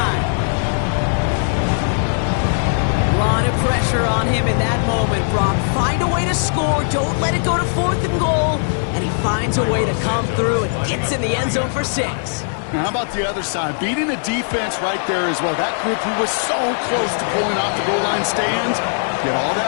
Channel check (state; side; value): silent; right; digital silence